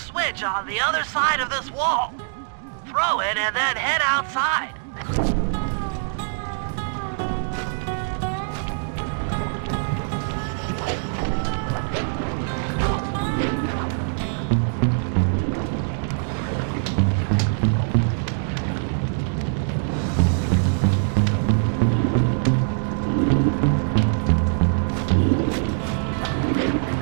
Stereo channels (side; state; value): left; silent; digital silence